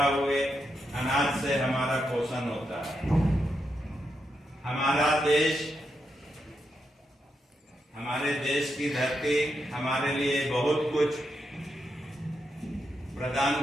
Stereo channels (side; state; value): both; normal; correlation 0.83